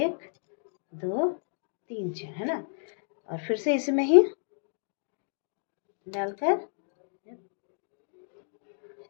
2 3 चेन है ना, और फिर से इसमें ही डालकर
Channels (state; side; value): silent; right; digital silence